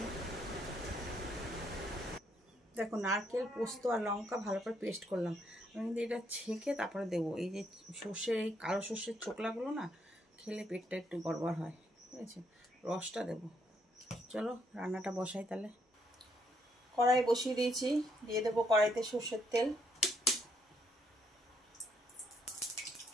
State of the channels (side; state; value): both; normal; correlation 0.73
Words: দেখো নারকেল, পোস্ত আর লঙ্কা ভালো করে পেস্ট করলাম। আমি কিন্তু এটা ছেঁকে তারপরে দেবো। এই যে সর্ষের, এই কালো সর্ষের ছোকলাগুলো না খেলে পেটটা একটু গড়বড় হয়, ঠিক আছে, রসটা দেবো। চলো রান্নাটা বসাই তাহলে। কড়াই বসিয়ে দিয়েছি, দিয়ে দেবো কড়াইতে সর্ষের তেল,